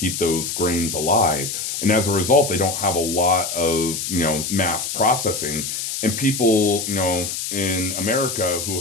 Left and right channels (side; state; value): left; noise; hiss, 4 dB below the sound